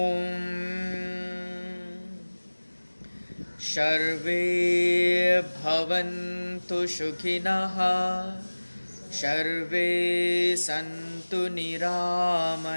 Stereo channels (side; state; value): both; inverted; correlation -1.00